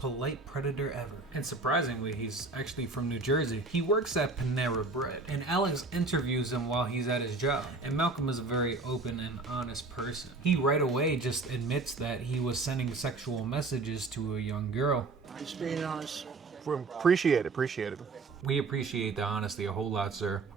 polite Predator ever. And surprisingly, he's actually from New Jersey. He works at Panera Bread, and Alex interviews him while he's at his job. And Malcolm is a very open and honest person. He right away just admits that he was sending sexual messages to a young girl. Just being honest. Appreciate it. We appreciate the honesty a whole lot, sir.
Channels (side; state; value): left; quieter; 3.7 dB